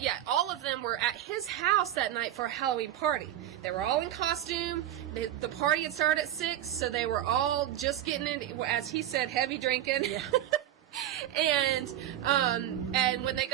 all of them were at his house that night for a Halloween party. They were all in costume. The party had started at 6, so they were all just getting in, as he said, heavy drinking. Yeah. And when they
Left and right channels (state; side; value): quieter; left; 12.2 dB